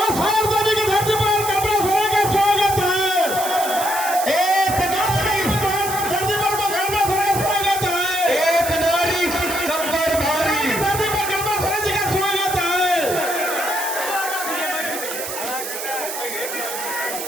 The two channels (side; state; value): right; noise; hiss, 6 dB below the sound